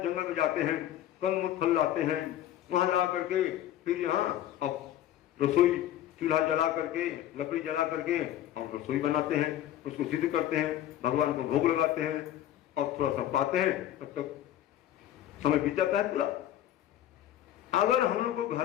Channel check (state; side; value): quieter; right; 12.2 dB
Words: जंगल में जाते हैं कंद फल लाते हैं, वहां ला करके फिर यहाँ अब रसोई चूल्हा जला करके, लकड़ी जला करके और रसोई बनाते हैं, उसको सिद्ध करते हैं, भगवान को भोग लगाते हैं और थोड़ा सा पाते हैं, तब तक समय बीत जाता है पूरा। अगर हम लोग को